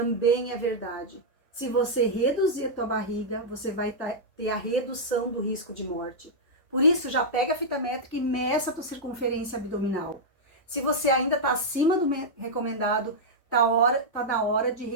é verdade. Se você reduzir a tua barriga, você vai ter a redução do risco de morte. Por isso, já pega a fita métrica e meça a tua circunferência abdominal. Se você ainda está acima do recomendado, tá na hora de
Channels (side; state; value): both; normal; correlation -0.07